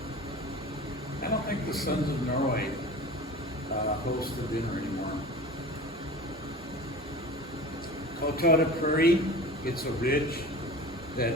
I don't think the Sons of Norway host the dinner anymore. Coteau de Prairie, it's a ridge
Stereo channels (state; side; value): normal; both; correlation 0.37